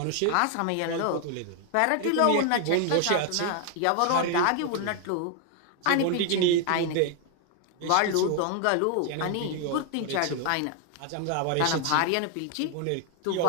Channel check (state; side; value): different; both; correlation 0.00